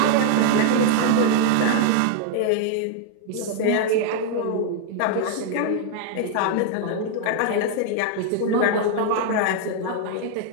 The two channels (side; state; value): both; different; correlation 0.00